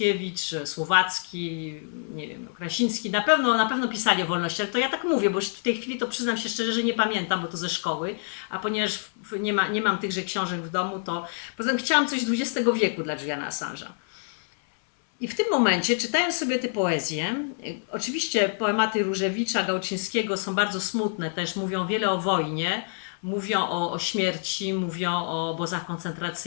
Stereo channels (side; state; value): right; silent; digital silence